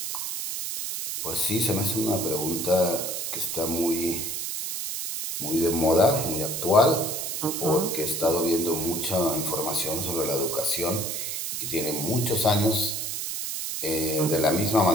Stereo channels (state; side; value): noise; right; hiss, 3 dB below the sound